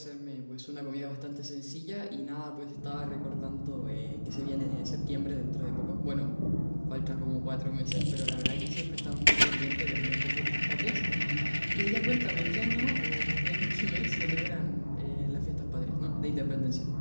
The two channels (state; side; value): inverted; both; correlation -1.00